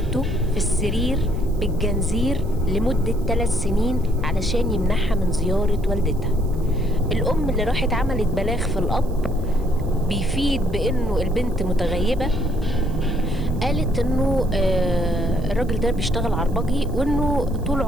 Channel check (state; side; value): noise; right; hiss, 26 dB below the sound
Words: في السرير بالجنزير لمدة 3 سنين علشان يمنعها من زيارة والدتها. الام اللي راحت عملت بلاغ في الاب بيفيد بانه البنت متغيبة، قالت انه الراجل ده بيشتغل عربجي، وانه طول